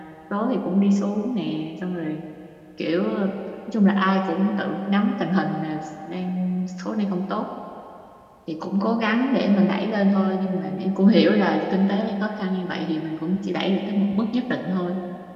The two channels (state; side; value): identical; both; correlation 1.00